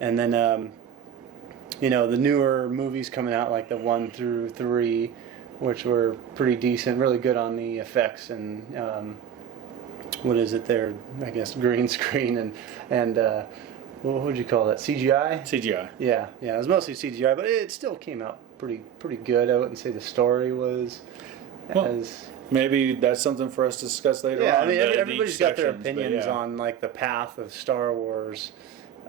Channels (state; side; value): quieter; left; 9.0 dB